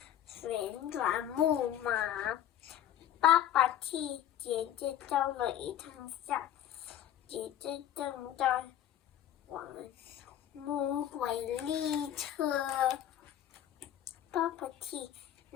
旋转木马。爸爸替姐姐照了一张相，姐姐正在玩魔鬼列车。爸爸替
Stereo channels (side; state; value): right; quieter; 11.1 dB